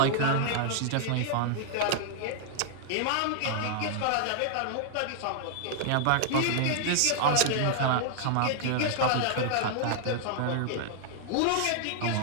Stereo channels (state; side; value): different; both; correlation 0.00